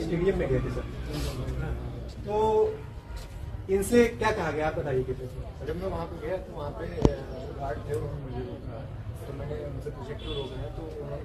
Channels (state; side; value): identical; both; correlation 1.00